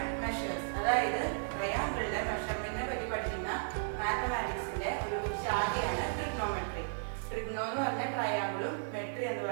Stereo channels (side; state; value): left; silent; digital silence